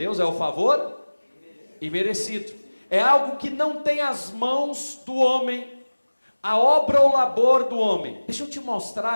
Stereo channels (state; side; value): inverted; both; correlation -1.00